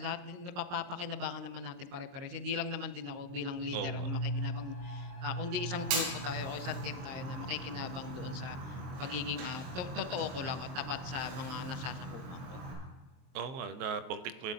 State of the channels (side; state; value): left; late; 23 ms